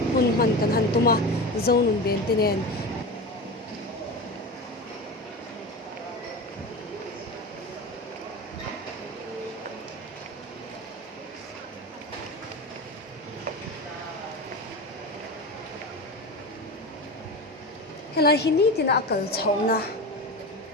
hun man kan han tuma Zonun ben tenen hela hini tina akal chhauna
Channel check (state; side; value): normal; both; correlation 0.26